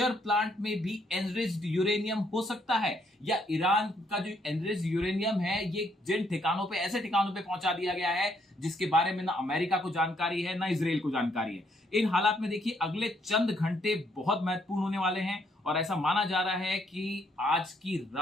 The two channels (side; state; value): both; normal; correlation 0.71